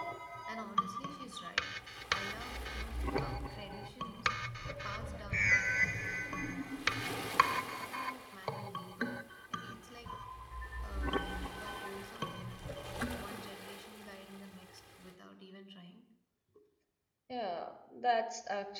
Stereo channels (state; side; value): identical; both; correlation 1.00